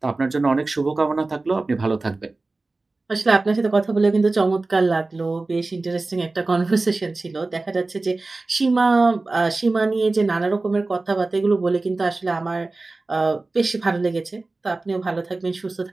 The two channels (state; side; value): quieter; left; 3.3 dB